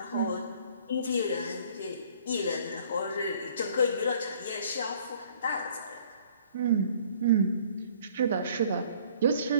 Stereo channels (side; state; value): both; inverted; correlation -0.56